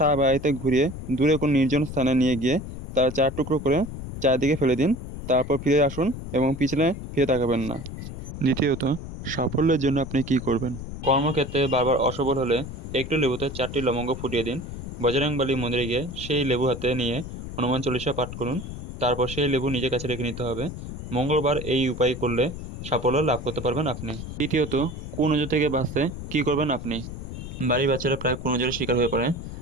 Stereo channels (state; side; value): noise; left; rumble, 9 dB below the sound